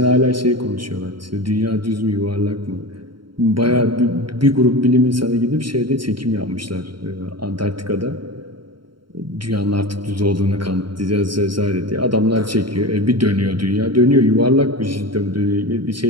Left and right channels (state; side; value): late; left; 0.73 ms